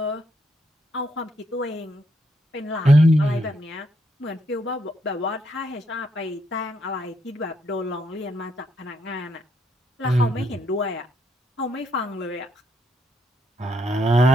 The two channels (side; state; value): both; normal; correlation 0.76